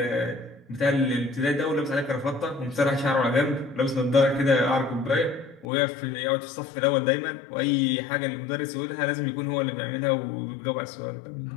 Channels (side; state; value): right; drops out; at 5.7 s